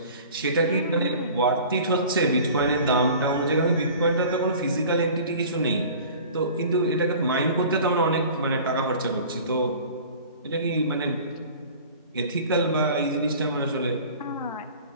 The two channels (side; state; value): both; inverted; correlation -0.43